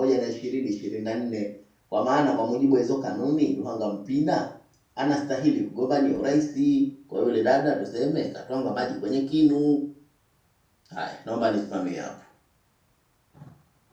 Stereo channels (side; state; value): both; identical; correlation 1.00